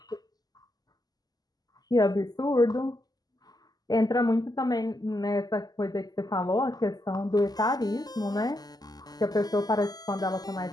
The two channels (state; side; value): late; right; 0.19 ms